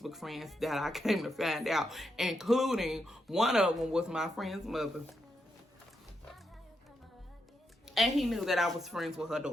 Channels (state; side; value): normal; both; correlation 0.83